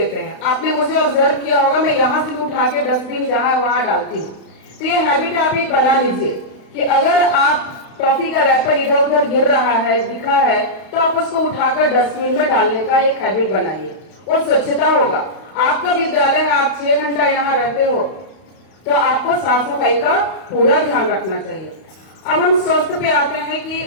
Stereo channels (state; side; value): late; right; 31 ms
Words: हैं। आपने मुझे ऑब्जर्व किया होगा, मैं यहाँ से उठा के डस्टबिन जहाँ वहां डालती हूँ। तो ये हैबिट आप एक बना लीजिए कि अगर आप टॉफी का रैपर इधर उधर गिर रहा है, दिखा है, तो आप उसको उठाकर डस्टबिन में डालने का एक हैबिट बनाइए और स्वच्छता होगा। आपका विद्यालय है, आप 6 घंटा यहाँ रहते हो तो आपको साफ सफाई का पूरा ध्यान रखना चाहिए। अब हम स्वस्थ पे आते हैं कि